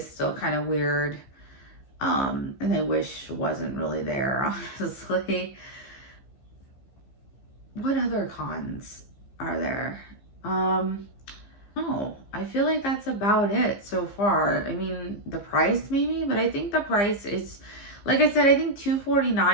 still kind of weird, and I wish wasn't really there, honestly. What other cons are there? No, I feel like that's about it so far. I mean, the price maybe, but I think the price is, like I said, I think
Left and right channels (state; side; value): late; right; 15 ms